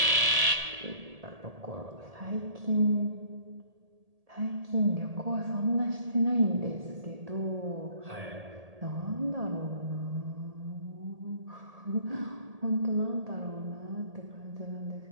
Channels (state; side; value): late; left; 1.8 ms